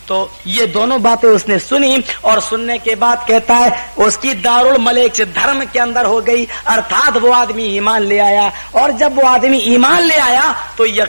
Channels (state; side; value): inverted; both; correlation -1.00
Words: तो ये दोनों बातें उसने सुनी और सुनने के बाद कहता है उसकी दारुल मलेक धर्म के अंदर हो गई, अर्थात वो आदमी ईमान ले आया। और जब वो आदमी ईमान ले आया तो